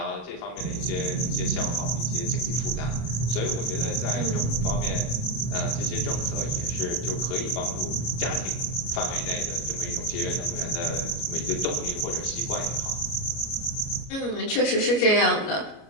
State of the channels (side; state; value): right; late; 33 ms